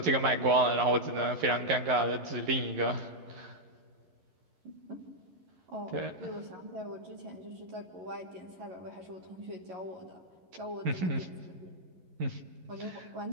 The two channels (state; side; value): late; left; 11 ms